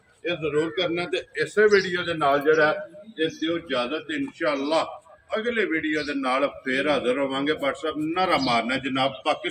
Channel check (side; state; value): both; identical; correlation 1.00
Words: ਇਹ ਜ਼ਰੂਰ ਕਰਨਾ। ਤੇ ਇਸੇ ਵੀਡੀਓ ਦੇ ਨਾਲ ਜਿਹੜਾ ਇਹ ਦਿਓ ਇਜਾਜ਼ਤ, ਇਨਸ਼ਾਅੱਲਾ ਅਗਲੇ ਵੀਡੀਓ ਦੇ ਨਾਲ ਫੇਰ ਹਾਜ਼ਰ ਹੋਵਾਂਗੇ। WhatsApp ਨਾਰਾ ਮਾਰਨਾ ਜਨਾਬ,